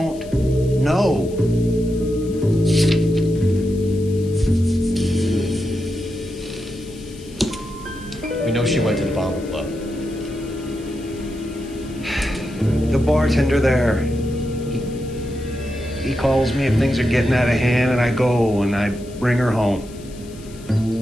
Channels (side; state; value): left; noise; hiss, 22 dB below the sound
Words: know. We know she went to the Bomber Club. The bartender there, he calls me if things are getting out of hand, and I go and I bring her home.